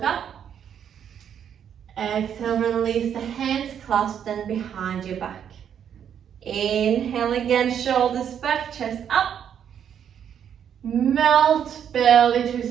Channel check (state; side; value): quieter; left; 8.7 dB